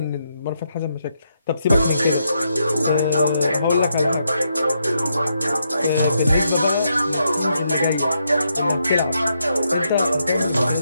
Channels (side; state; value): both; inverted; correlation -0.80